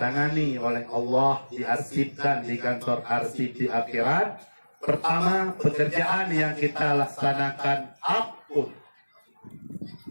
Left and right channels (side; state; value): both; inverted; correlation -1.00